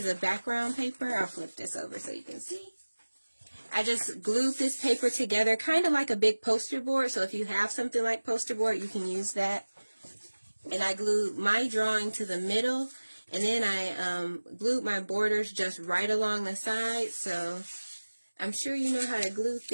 of background paper. I'll flip this over so you can see. I just glued this paper together, kind of like a big poster board. So if you have something like poster board, you can use that. And I glued my drawing to the middle. And then I glued my borders just right along the side. So I'm sure you know how to glue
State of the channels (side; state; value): both; inverted; correlation -1.00